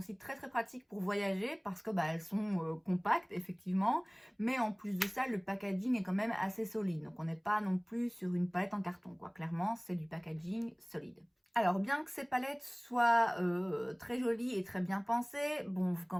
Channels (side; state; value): both; identical; correlation 1.00